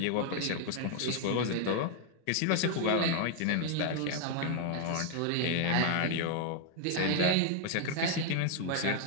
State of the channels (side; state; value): both; different; correlation 0.00